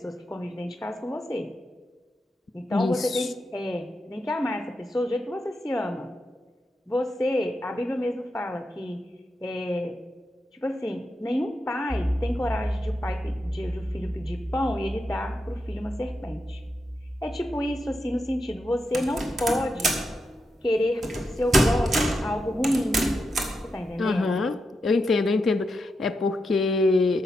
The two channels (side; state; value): both; normal; correlation 0.86